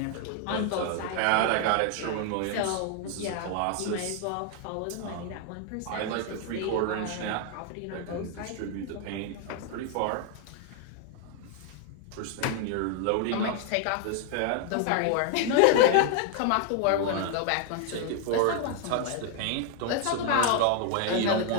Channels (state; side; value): different; both; correlation 0.00